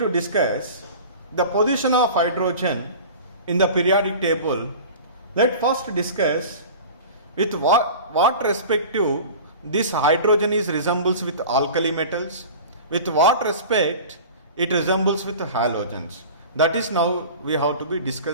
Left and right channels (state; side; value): inverted; both; correlation -0.37